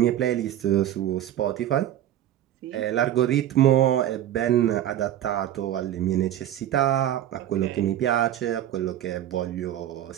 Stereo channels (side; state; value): left; quieter; 11.8 dB